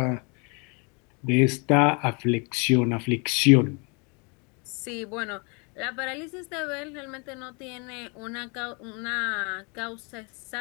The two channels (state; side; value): quieter; right; 32.6 dB